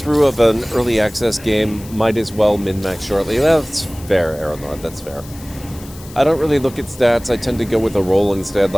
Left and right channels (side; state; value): left; noise; hiss, 19 dB below the sound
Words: of an early access game, might as well min-max shortly. That's fair, Aaron Lord, that's fair. I don't really look at stats. I tend to go with a roll instead,